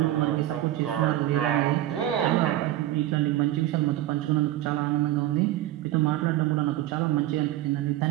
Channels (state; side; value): quieter; left; 14.2 dB